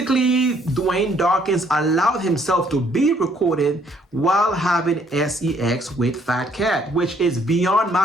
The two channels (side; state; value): both; normal; correlation 0.65